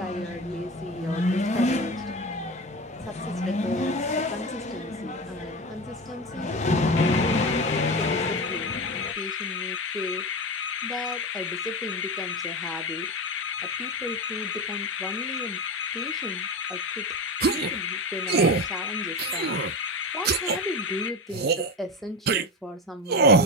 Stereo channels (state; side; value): normal; both; correlation 0.23